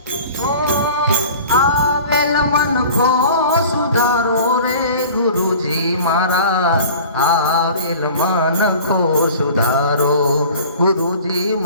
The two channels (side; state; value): both; inverted; correlation -0.43